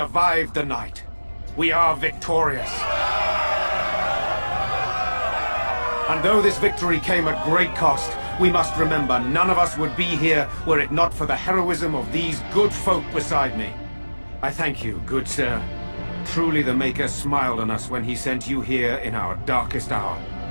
the night. We are victorious. And though this victory came at great cost, we must remember none of us would be here were it not for the heroism of these good folk beside me. I thank you, good sir. Truly the Maker smiled on us when he sent you here in our darkest hour.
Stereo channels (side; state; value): both; inverted; correlation -1.00